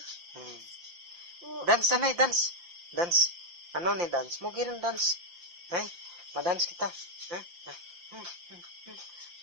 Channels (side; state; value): left; late; 5.8 ms